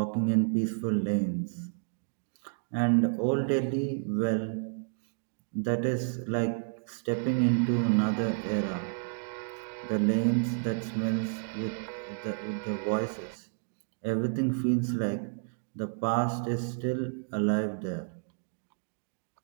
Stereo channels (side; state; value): left; silent; digital silence